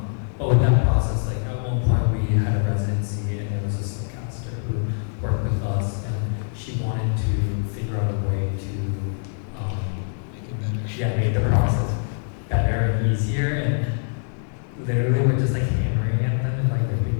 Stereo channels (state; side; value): silent; right; digital silence